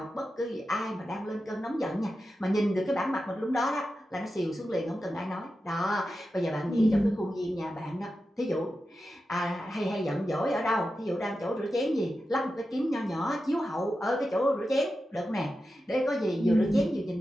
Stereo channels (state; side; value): normal; both; correlation 0.91